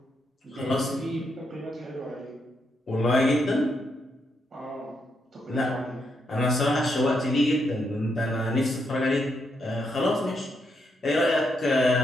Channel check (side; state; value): both; normal; correlation 0.79